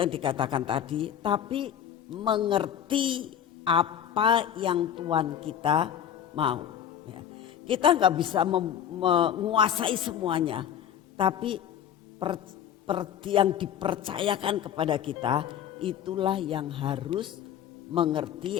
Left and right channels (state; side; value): quieter; right; 9.6 dB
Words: dikatakan tadi, tapi mengerti apa yang Tuhan kita mau. Kita enggak bisa menguasai semuanya, tapi yang dipercayakan kepada kita itulah yang harus mengerti